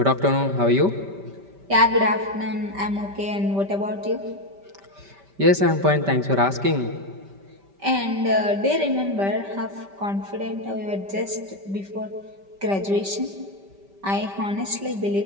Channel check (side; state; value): left; late; 5.1 ms